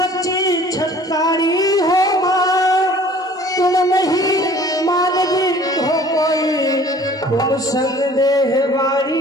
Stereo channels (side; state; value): both; normal; correlation 0.50